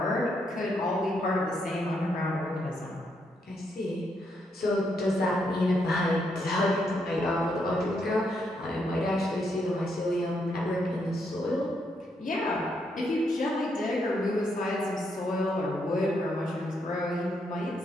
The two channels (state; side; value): normal; both; correlation 0.77